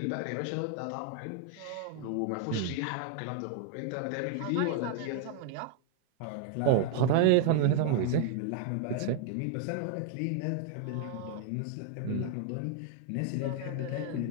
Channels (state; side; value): different; both; correlation 0.00